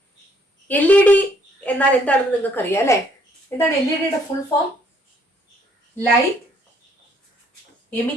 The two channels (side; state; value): both; normal; correlation 0.65